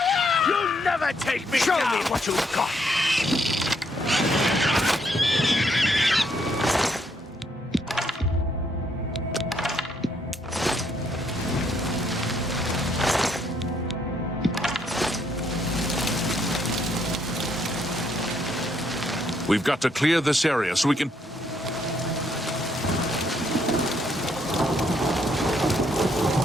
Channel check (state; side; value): normal; both; correlation 0.72